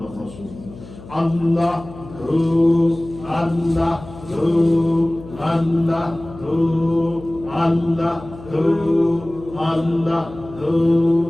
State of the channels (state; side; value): noise; left; hum, 17 dB below the sound